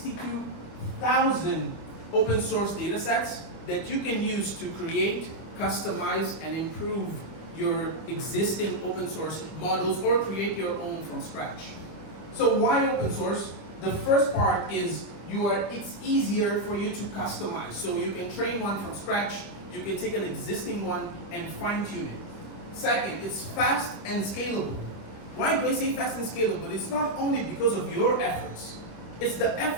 open source data sets that you can use to create, customize, and improve your existing open source models or create your own from scratch. So why open source? The first part is it's easier for you to customize. So you can train one from scratch, you can take an existing one and fine tune it. Second, it's fast and scalable. Why do I say fast and scalable? It's not only because of your efforts, It's the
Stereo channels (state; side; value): late; right; 25 ms